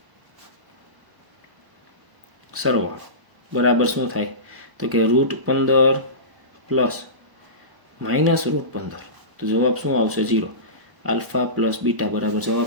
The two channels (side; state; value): left; late; 1.0 ms